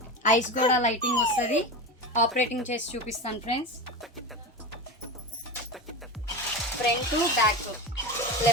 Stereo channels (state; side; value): normal; both; correlation 0.24